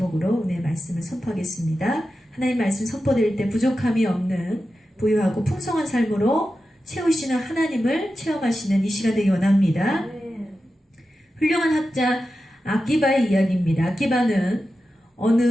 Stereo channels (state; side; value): normal; both; correlation 0.91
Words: 은혜의 말씀을 선포하겠습니다. 하나님 말씀 선포될 때 부족함이 없는 부유하고 풍성한 삶으로 채우시는 하나님을 체험하시는 이 시간 되기 원합니다. 훌륭한 학자 아기바의 이야기입니다. 아기바는